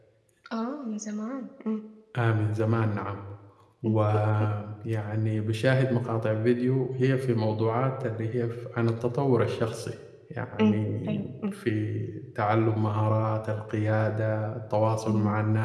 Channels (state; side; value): identical; both; correlation 1.00